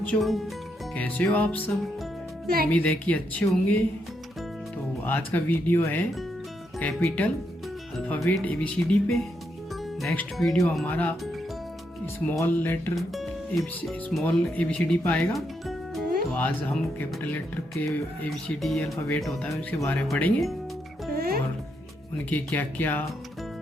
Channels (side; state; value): both; normal; correlation 0.79